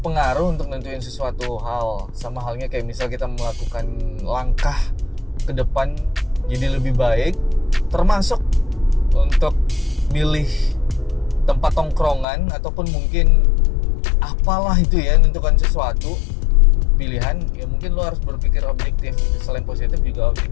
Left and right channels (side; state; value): right; drops out; at 12.2 s